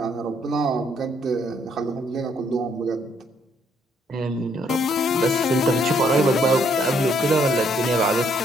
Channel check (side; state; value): both; normal; correlation 0.69